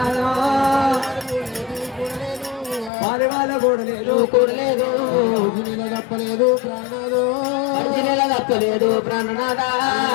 వారి వాళ్ళ కూడలేదు కూడలేదు తప్పలేదు ప్రాణనాథ అర్జునుల తప్పలేదు ప్రాణనాథ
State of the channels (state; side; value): drops out; right; at 2.9 s